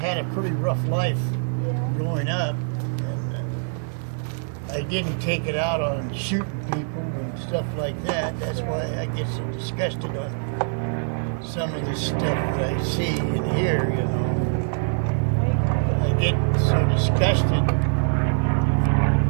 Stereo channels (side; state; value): left; silent; 63 dB below the other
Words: a pretty rough life growing up, and I didn't take it out on shooting people and stuff like that. That's why I get so disgusted on some of the stuff that I see and hear, you know. I get so disgusted